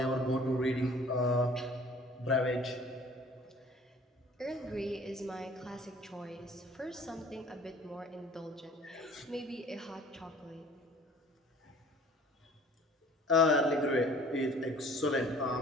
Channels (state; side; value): normal; both; correlation 0.51